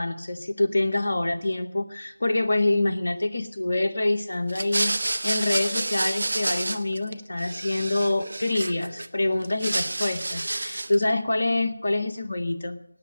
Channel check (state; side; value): inverted; both; correlation -0.97